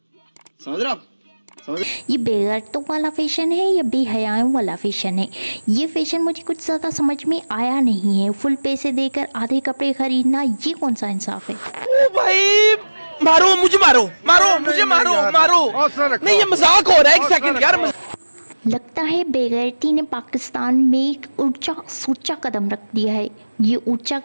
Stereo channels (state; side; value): inverted; both; correlation -1.00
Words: समझ रहे हो आप? ये बेगैरतों वाला फैशन है या बेहयाओं वाला फैशन है? ये फैशन मुझे कुछ ज़्यादा समझ में आया नहीं है। फुल पैसे देकर आधे कपड़े खरीदना, ये कौन सा इंसाफ है? ओ भाई मारो मुझे, मारो मारो मुझे, मारो मारो। नहीं ये मजाक हो रहा है, एक सेकंड यार। लगता है बेगैरती ने पाकिस्तान में एक ऊंचा सोचा कदम रख दिया है। ये ऊंचा